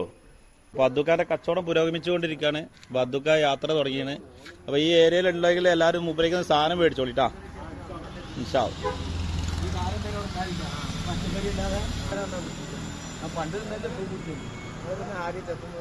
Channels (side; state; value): both; identical; correlation 1.00